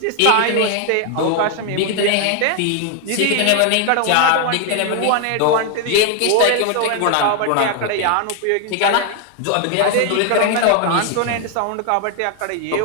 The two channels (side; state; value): both; different; correlation 0.00